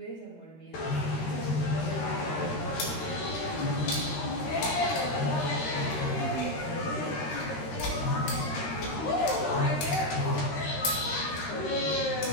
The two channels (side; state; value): right; late; 13 ms